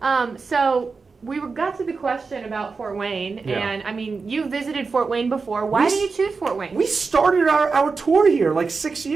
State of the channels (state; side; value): quieter; left; 4.6 dB